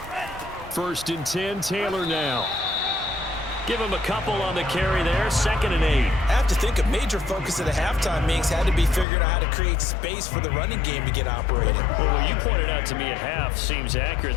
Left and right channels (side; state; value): right; drops out; at 9.1 s